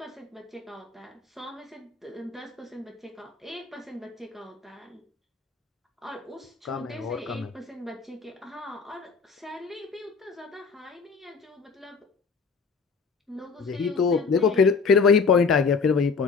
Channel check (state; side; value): quieter; right; 5.0 dB